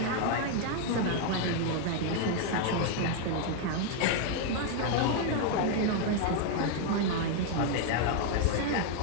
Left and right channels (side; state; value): both; different; correlation 0.01